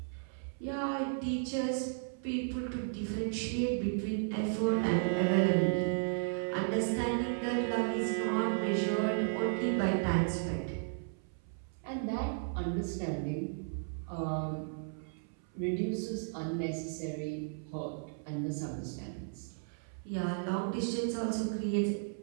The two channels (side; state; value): left; silent; 55 dB below the other